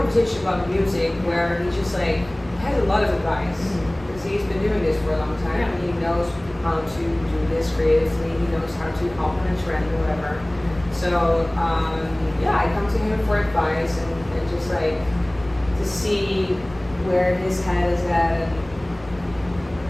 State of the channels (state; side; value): noise; left; rumble, 20 dB below the sound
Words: about music where he just like has a lot of advice because he's been doing this for a long time. And he knows how to do this creatively. He knows how to compliment trend or whatever. So I come to him for advice and just like to see where his head is at.